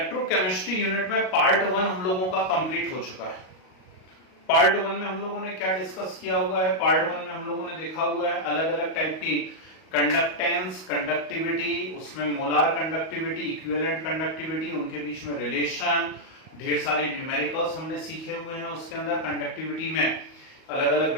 यूनिट में पार्ट 1 हम लोगों का कंप्लीट हो चुका है। पार्ट 1 में हम लोगों ने क्या डिस्कस किया हुआ है? पार्ट 1 में हम लोगों ने देखा हुआ है अलग अलग टाइप की कंडक्टेंस, कंडक्टिविटी, उसमें मोलार कंडक्टिविटी, इक्विवेलेंट कंडक्टिविटी, उनके बीच में रिलेशन, ढेर सारे न्यूमेरिकल्स हमने सीखे हुए हैं। उसके अंदर कंडक्टिविटी में अलग अलग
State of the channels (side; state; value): right; late; 38 ms